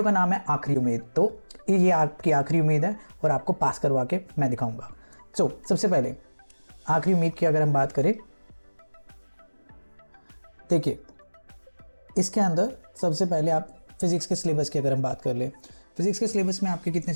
का नाम है आखिरी उम्मीद। तो ये आपकी आखिरी उम्मीद है और आपको पास करवा के मैं दिखाऊंगा। सबसे पहले आखिरी उम्मीद की अगर हम बात करें, देखिए इसके अंदर सबसे पहले आप फिजिक्स के सिलेबस की अगर हम बात कर ले, फिजिक्स के सिलेबस में आपके कितने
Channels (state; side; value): inverted; both; correlation -1.00